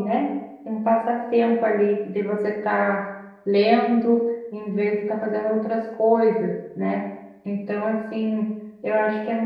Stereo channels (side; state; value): both; identical; correlation 1.00